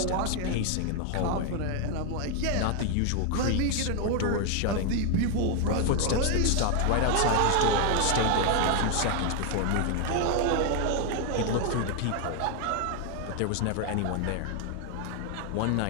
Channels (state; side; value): different; both; correlation 0.00